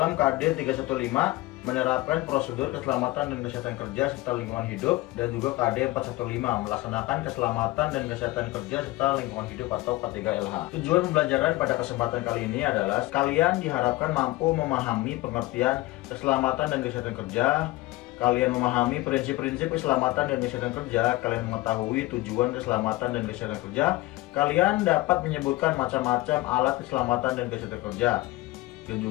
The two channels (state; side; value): quieter; right; 19.3 dB